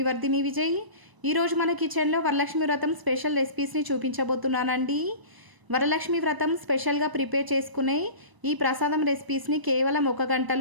వర్ధిని విజయ్. ఈరోజు మన కిచెన్లో వరలక్ష్మి వ్రతం స్పెషల్ రెసిపీస్ని చూపించబోతున్నానండి. వరలక్ష్మి వ్రతం స్పెషల్గా ప్రిపేర్ చేసుకునే ఈ ప్రసాదం రెసిపీస్ని కేవలం 1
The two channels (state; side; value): late; left; 1.0 ms